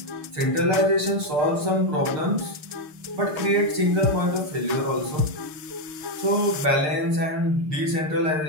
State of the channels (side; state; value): left; late; 6.6 ms